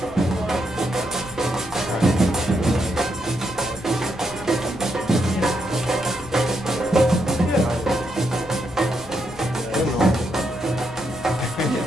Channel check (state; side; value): noise; left; rumble, 18 dB below the sound